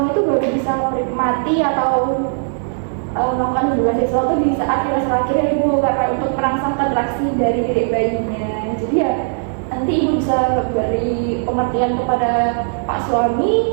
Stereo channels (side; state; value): left; silent; digital silence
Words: itu baru bisa menikmati atau melakukan hubungan seksual itu di saat trimester akhir ya Ibu, karena untuk merangsang kontraksi dari diri bayinya. Jadi ya nanti ibu bisa beri pengertian kepada Pak